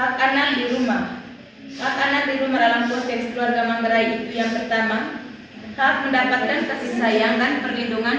anak di rumah. Hak anak di rumah dalam konteks keluarga Manggarai itu yang pertama, hak mendapatkan kasih sayang dan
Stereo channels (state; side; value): identical; both; correlation 1.00